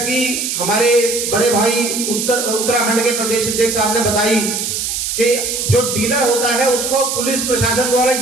हमारे बड़े भाई उत्तराखंड के प्रदेश अध्यक्ष साहब ने बताई कि जो डीलर होता है उसको पुलिस प्रशासन द्वारा एक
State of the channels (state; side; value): noise; right; hiss, 2 dB below the sound